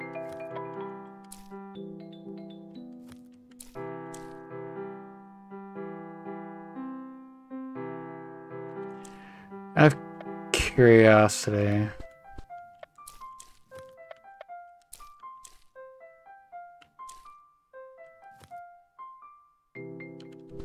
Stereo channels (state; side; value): identical; both; correlation 1.00